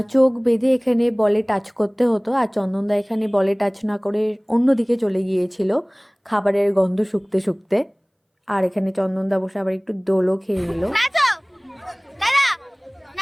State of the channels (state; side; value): identical; both; correlation 1.00